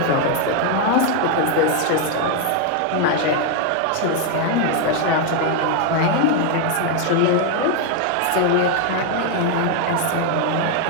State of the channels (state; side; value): different; both; correlation 0.01